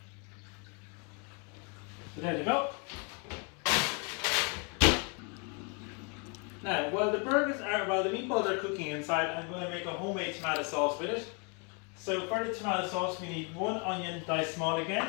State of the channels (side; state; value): right; quieter; 34.8 dB